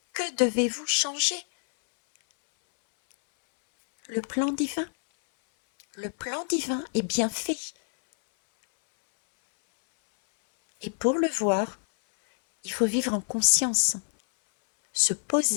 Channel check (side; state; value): right; silent; 61 dB below the other